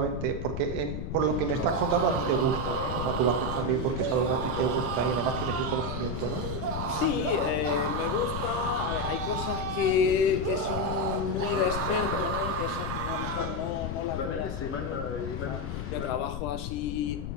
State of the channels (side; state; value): left; noise; rumble, 5 dB below the sound